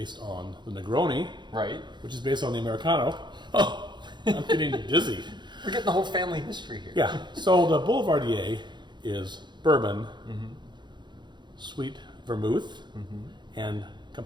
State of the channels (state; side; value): late; left; 0.22 ms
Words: on the Negroni, right? Which is based on the Americano. Oh, I'm getting dizzy. We're getting the whole family history here. Yeah, so the Boulevardier is bourbon, sweet vermouth, and